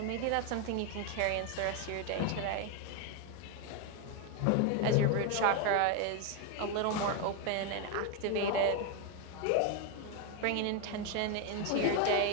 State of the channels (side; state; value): both; different; correlation 0.01